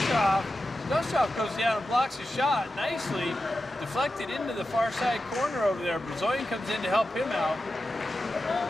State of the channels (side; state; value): both; normal; correlation 0.91